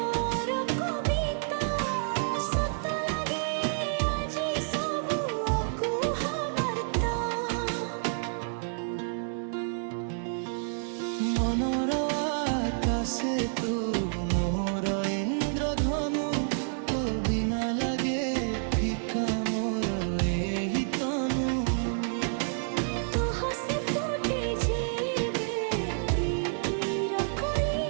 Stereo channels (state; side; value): silent; left; digital silence